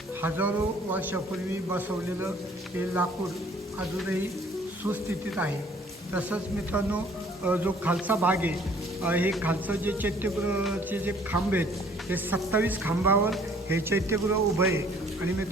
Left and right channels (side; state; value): both; normal; correlation 0.57